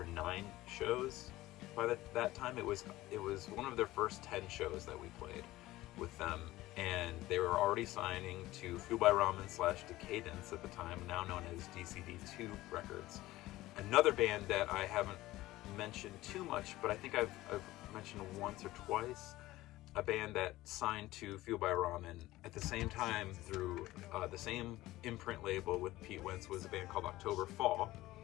9 shows by that time. It was one of their first 10 shows that we played with them, and they were already signing to Fuel by Ramen / Decaydance at the time, now known as DCD2 Records. Another band that I haven't mentioned too much, but I think I've mentioned once or twice, a band that signed to Fuel by Ramen at the same time through the same imprint label with Pete Wentz, was a band called October Fall.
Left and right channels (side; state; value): right; quieter; 17.2 dB